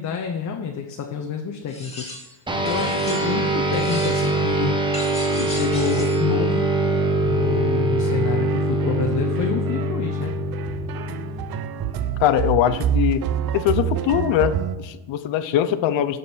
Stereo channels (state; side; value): normal; both; correlation 0.28